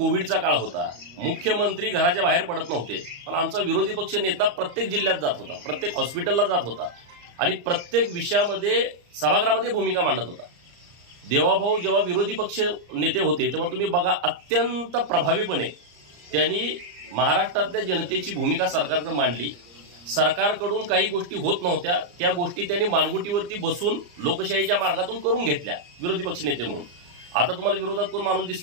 काळ होता, मुख्यमंत्री घराच्या बाहेर पडत नव्हते, पण आमचा विरोधी पक्ष नेता प्रत्येक जिल्ह्यात जात होता, प्रत्येक हॉस्पिटलला जात होता आणि प्रत्येक विषयामध्ये सभागृहामध्ये भूमिका मांडत होता। देवाभाऊ जेव्हा विरोधी पक्ष नेते होते तेव्हा तुम्ही बघा, अत्यंत प्रभावीपणे त्यांनी महाराष्ट्रातल्या जनतेची भूमिका सरकारकडे मांडली। सरकारकडून काही गोष्टी होत नव्हत्या, त्या गोष्टी त्यांनी मानगुटीवरती बसून लोकशाहीच्या मार्गातून करून घेतल्या विरोधी पक्ष नेते म्हणून। आता तुम्हाला विरोधात कोण माणूस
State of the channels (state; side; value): late; left; 34 ms